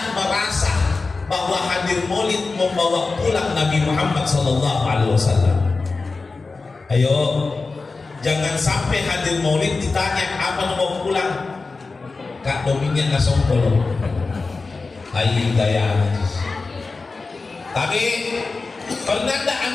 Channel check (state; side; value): quieter; right; 4.0 dB